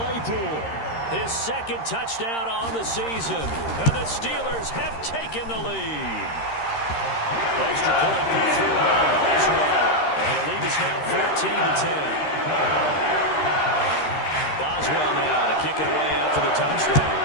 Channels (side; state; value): right; late; 13 ms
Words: his 2nd touchdown on the season. And the Steelers have taken the lead. Extra point put through by Boswell. And the lead is now 14-10. Boswell now to kick it away after the